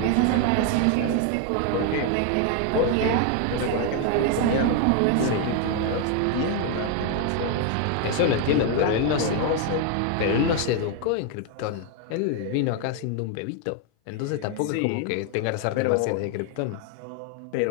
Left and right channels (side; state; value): both; different; correlation 0.01